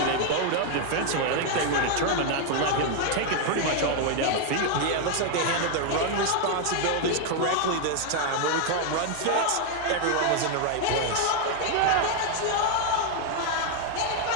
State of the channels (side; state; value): both; different; correlation 0.01